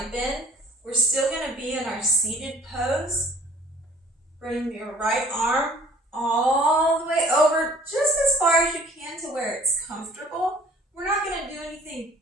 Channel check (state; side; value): normal; both; correlation 0.53